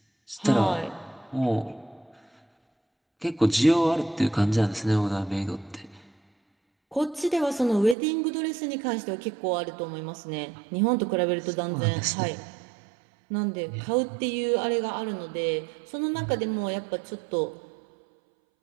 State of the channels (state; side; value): drops out; left; at 8.0 s